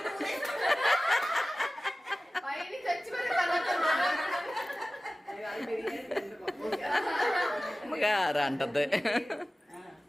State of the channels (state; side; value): normal; both; correlation 0.96